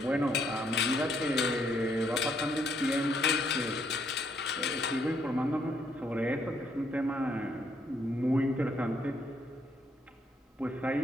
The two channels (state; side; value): normal; both; correlation 0.71